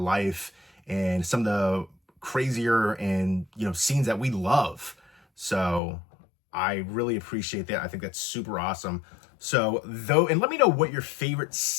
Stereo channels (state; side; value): drops out; right; at 5.8 s